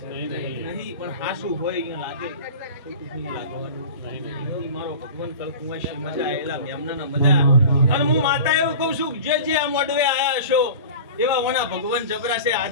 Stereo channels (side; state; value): both; inverted; correlation -0.37